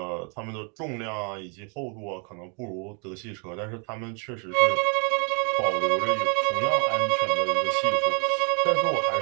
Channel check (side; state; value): left; quieter; 36.6 dB